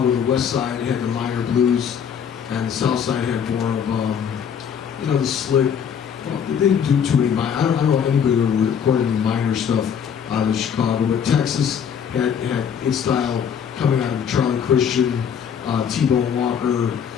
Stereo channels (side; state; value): right; quieter; 7.8 dB